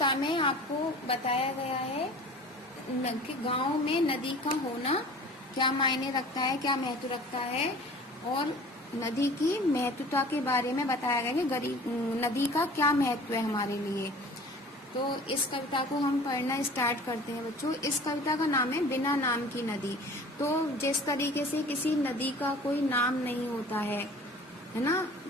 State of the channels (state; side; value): normal; both; correlation 0.44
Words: में आपको बताया गया है कि गांव में नदी का होना क्या मायने रखता है, क्या महत्व रखता है, और नदी की महत्वता के बारे में बताया गया कि नदी का क्या महत्व है हमारे लिए। तो इस कविता को हम पढ़ना स्टार्ट करते हैं बच्चों। इस कविता का नाम है बिना नाम की नदी। तो जिस तरीके से किसी नदी का कोई नाम नहीं होता है ना,